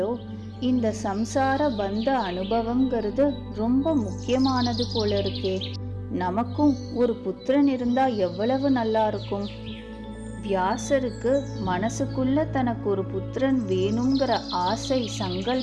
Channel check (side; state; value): both; identical; correlation 1.00